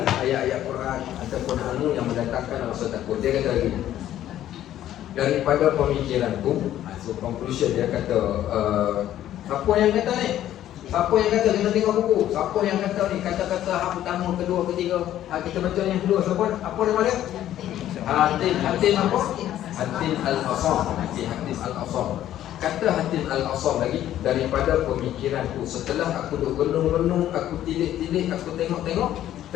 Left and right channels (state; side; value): quieter; right; 12.3 dB